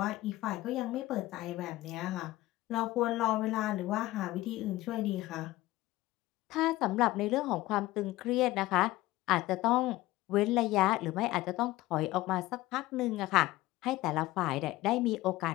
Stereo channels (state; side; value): quieter; right; 17.6 dB